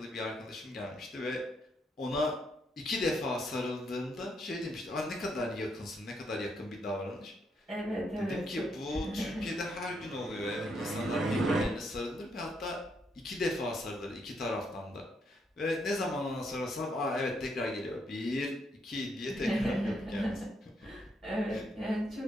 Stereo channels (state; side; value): normal; both; correlation 0.76